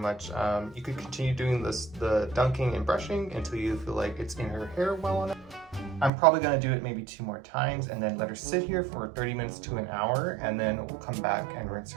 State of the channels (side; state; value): left; drops out; at 6.1 s